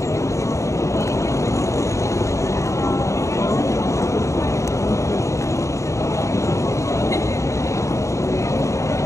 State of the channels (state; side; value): late; right; 0.15 ms